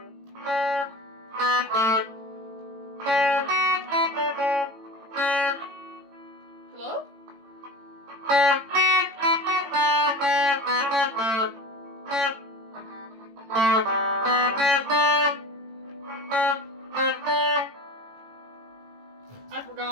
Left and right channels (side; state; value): left; late; 18 ms